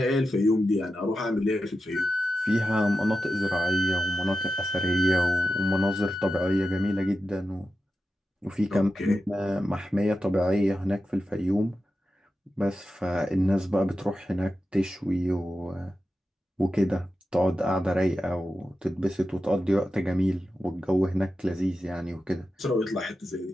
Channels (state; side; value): normal; both; correlation 0.91